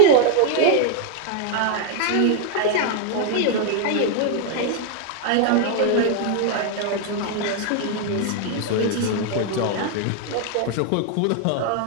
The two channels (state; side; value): different; both; correlation 0.00